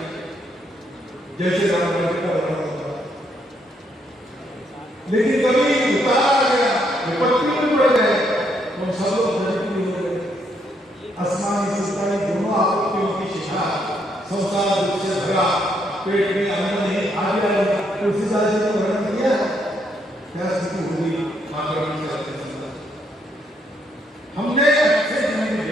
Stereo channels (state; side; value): normal; both; correlation 0.74